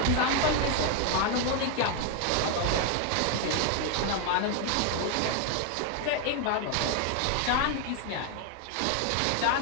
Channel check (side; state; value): both; different; correlation 0.01